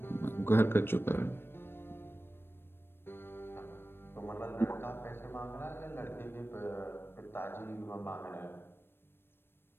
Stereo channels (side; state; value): right; late; 0.11 ms